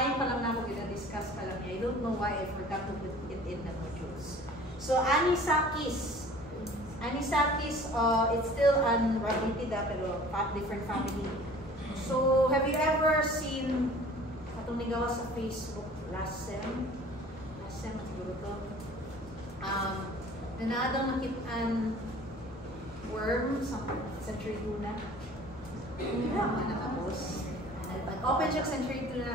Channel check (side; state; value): both; normal; correlation 0.47